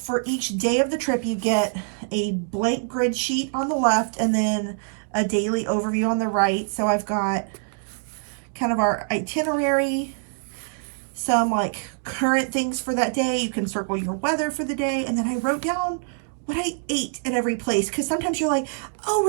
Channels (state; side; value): silent; left; digital silence